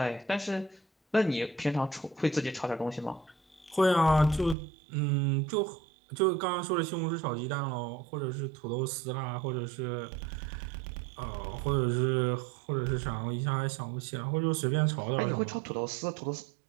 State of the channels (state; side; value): drops out; left; at 4.5 s